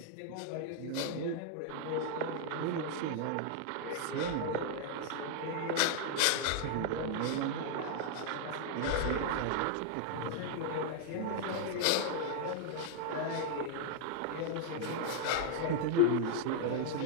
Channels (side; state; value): both; different; correlation 0.00